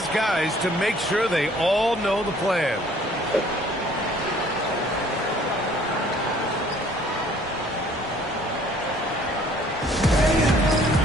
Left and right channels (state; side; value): normal; both; correlation 0.57